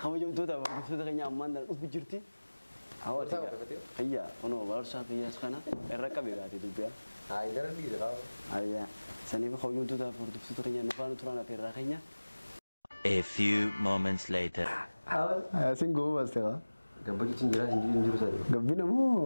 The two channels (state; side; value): inverted; both; correlation -1.00